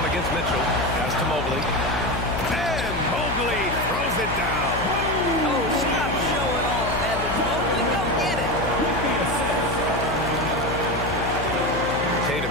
against Mitchell. Pass to Mobley. And Mobley throws it down. Oh, stop showing off, Evan Mobley. Go get it. Tatum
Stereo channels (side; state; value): left; noise; hum, 5 dB below the sound